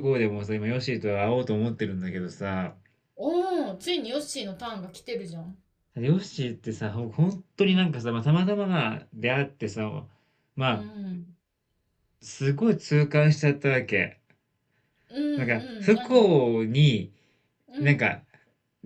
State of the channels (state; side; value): identical; both; correlation 1.00